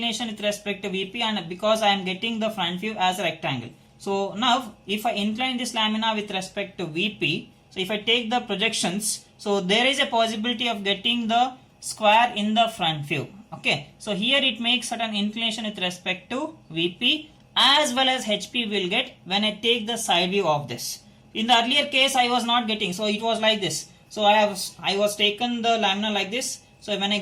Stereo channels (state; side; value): identical; both; correlation 1.00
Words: with respect to VP and because I am getting the front view as a rectangle. So now if I incline this lamina with respect to VP, so if I take the projections, so there is a possibility of getting the square in the front view. Okay, so here it makes certain inclination with respect to VP as well as HP will get when I take the side view of this. In the earlier case I was not getting, so it was like this. So I was taken the lamina like this. So when